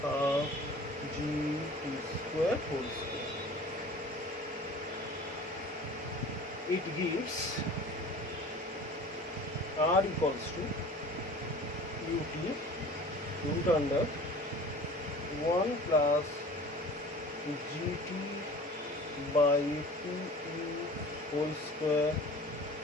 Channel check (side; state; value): both; normal; correlation 0.43